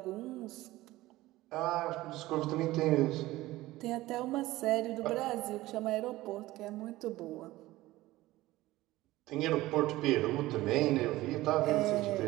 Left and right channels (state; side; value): quieter; left; 17.6 dB